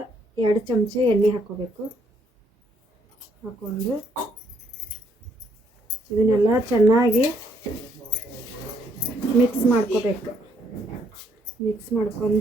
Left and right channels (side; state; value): both; normal; correlation 0.70